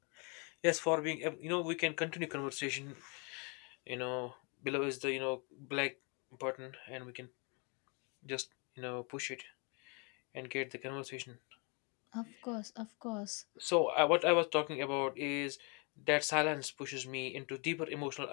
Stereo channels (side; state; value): right; quieter; 33.2 dB